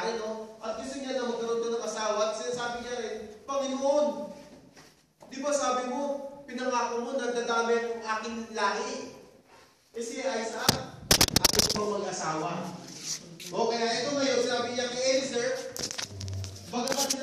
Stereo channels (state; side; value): identical; both; correlation 1.00